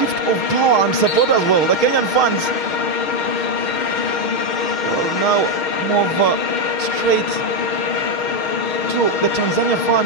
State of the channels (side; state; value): right; late; 6.4 ms